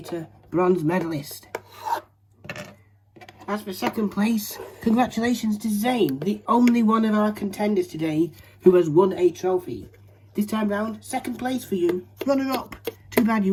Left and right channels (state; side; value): identical; both; correlation 1.00